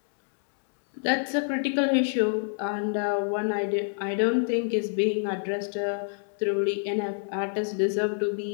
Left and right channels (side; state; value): right; silent; digital silence